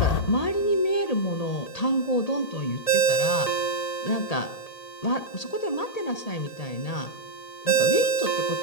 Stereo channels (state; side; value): late; right; 1.8 ms